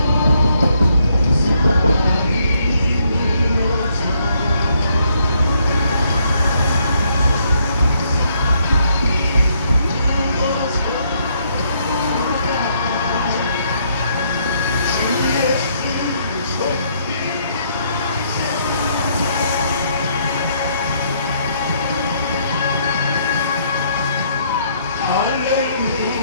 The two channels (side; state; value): both; inverted; correlation -0.71